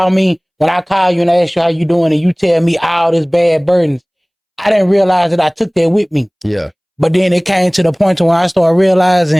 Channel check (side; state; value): both; identical; correlation 1.00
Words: me, when I call you and I ask you how you doing and you tell me all this bad burdens, I didn't realize that I took that with me. Yeah. But then it came to the point when I started